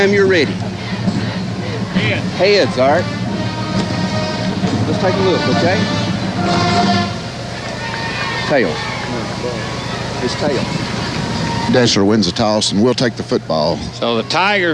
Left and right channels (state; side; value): identical; both; correlation 1.00